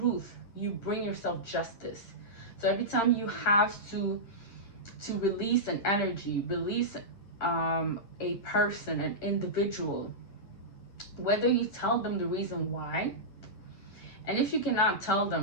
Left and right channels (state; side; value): late; right; 10 ms